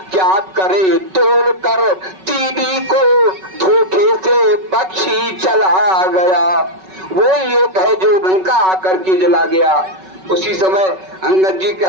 क्या करे तोड़ कर तीनी को धोखे से पक्षी चला गया। वो एक है जो लंका आकर के जला गया। उसी समय अंगद जी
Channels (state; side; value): late; left; 5.3 ms